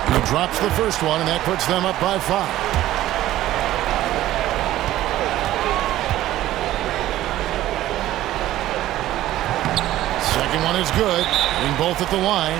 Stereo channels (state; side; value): quieter; left; 14.4 dB